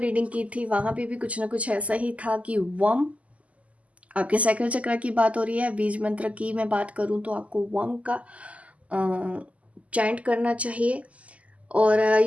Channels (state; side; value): late; left; 0.069 ms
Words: की थी वहाँ पे भी कुछ ना कुछ ऐसा ही था कि वम, आपके सैक्रल चक्र की बात हो रही है। बीज मंत्र की मैं बात करूँ तो आपको वम का चैंट करना चाहिए। और